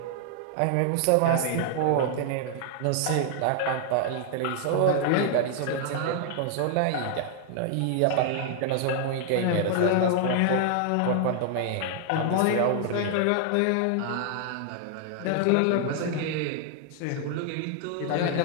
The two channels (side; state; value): both; different; correlation 0.00